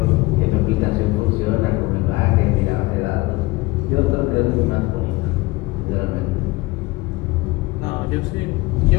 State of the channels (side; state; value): right; quieter; 21.2 dB